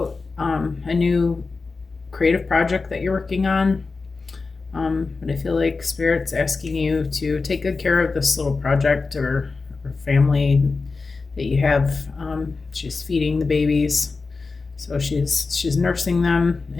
a new creative project that you're working on. But I feel like Spirit's asking you to take good care of this little project or family that you have. She's feeding the babies, so she's nursing them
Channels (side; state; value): right; quieter; 4.1 dB